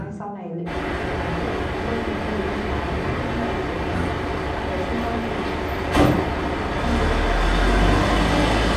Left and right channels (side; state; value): both; identical; correlation 1.00